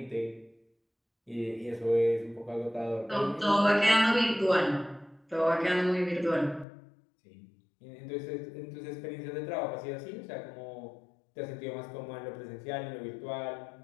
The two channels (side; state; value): right; drops out; at 6.7 s